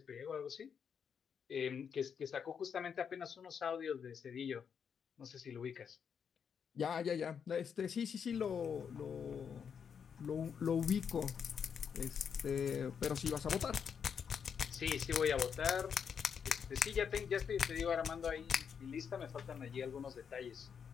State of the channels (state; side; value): quieter; right; 7.1 dB